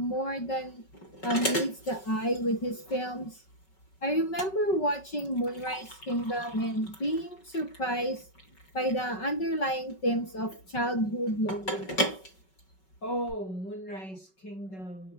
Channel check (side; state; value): right; late; 5.3 ms